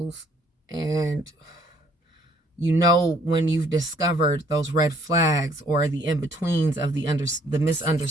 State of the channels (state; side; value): normal; both; correlation 0.62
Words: And you know when you've discovered those red flags or the in-betweens of the